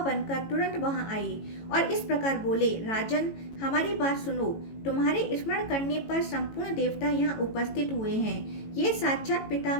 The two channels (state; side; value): late; right; 18 ms